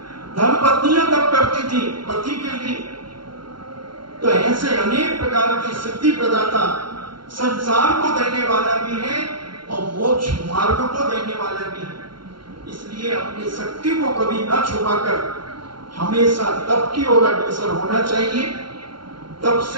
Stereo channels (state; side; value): late; left; 0.73 ms